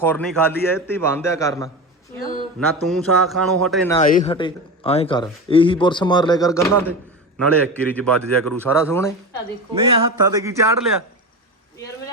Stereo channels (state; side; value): normal; both; correlation 0.24